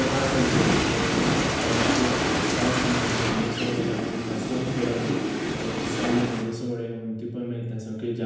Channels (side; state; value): both; identical; correlation 1.00